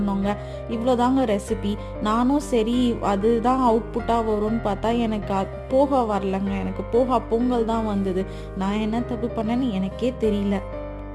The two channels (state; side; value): identical; both; correlation 1.00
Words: இவ்வளோதாங்க ரெசிபி. நானும் சரி அதுதான் அவுட்புட்டாக வரும்னு பார்த்தா எனக்கு போகா வரலங்க. எனக்கு போகா பொங்கல் தான் வந்தது. நான் என்ன தப்பு பண்ணேன்னு எனக்கே தெரியல.